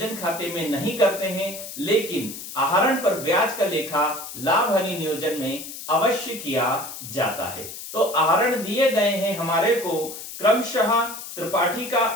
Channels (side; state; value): left; noise; hiss, 11 dB below the sound